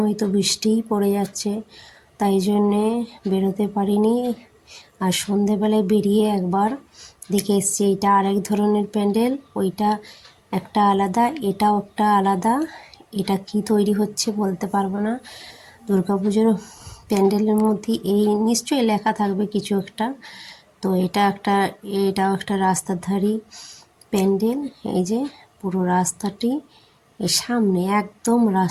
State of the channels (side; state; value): both; identical; correlation 1.00